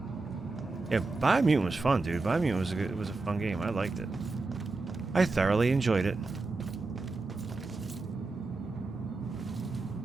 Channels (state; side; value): quieter; left; 3.6 dB